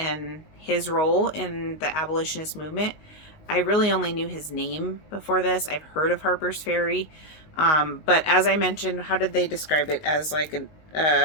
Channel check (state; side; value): late; right; 19 ms